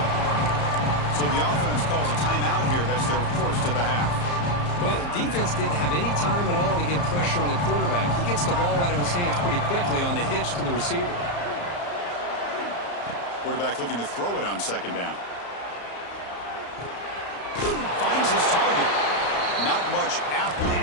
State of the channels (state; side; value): late; right; 34 ms